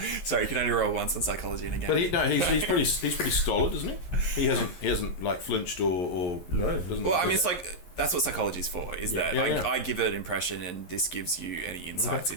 Sorry, you can only roll once on psychology in a game. But he's pretty stolid, isn't he? He hasn't like flinched or No. doesn't. Well, I mean, it's like that's what psychology's for. Is that Yeah. I give it an impression, and this gives you any insights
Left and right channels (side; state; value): right; late; 11 ms